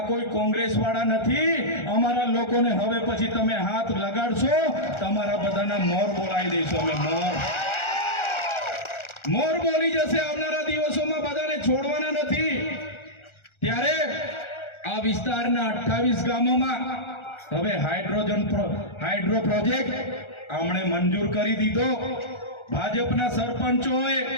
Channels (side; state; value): right; late; 1.4 ms